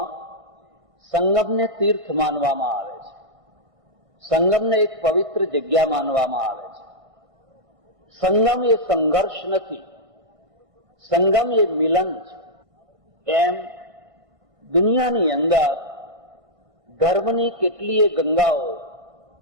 સંગમને તીર્થ માનવામાં આવે છે. સંગમને એક પવિત્ર જગ્યા માનવામાં આવે છે. સંગમ એ સંઘર્ષ નથી, સંગમ એ મિલન છે. એમ દુનિયાની અંદર ધર્મની કેટલીય ગંગાઓ,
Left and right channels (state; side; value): late; left; 1.5 ms